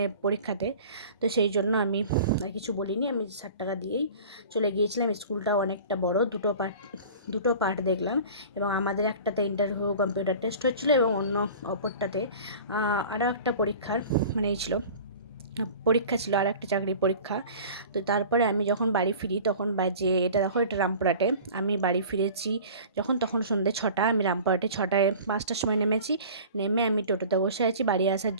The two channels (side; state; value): both; inverted; correlation -0.41